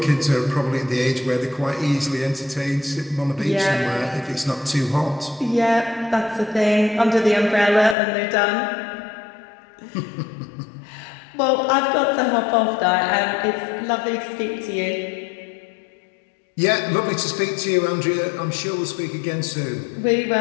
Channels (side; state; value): right; drops out; at 8.0 s